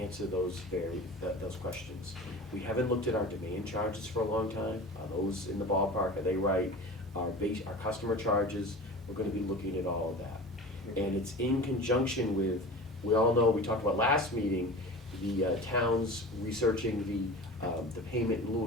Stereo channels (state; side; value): normal; both; correlation 0.34